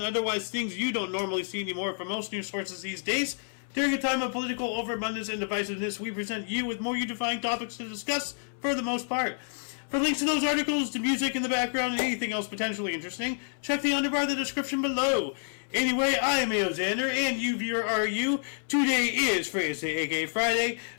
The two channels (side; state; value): right; silent; 59 dB below the other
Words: otherwise things you don't normally see anymore from most news sources these days. During a time of political overabundance and divisiveness, we present you with more unifying topics to discuss for the most part. For links to those articles, to music in the background, and anything else potentially interesting, check the underbar of the description below. Anyway, I am Alexander, and you viewer are you. Today is Thursday, aka Friday,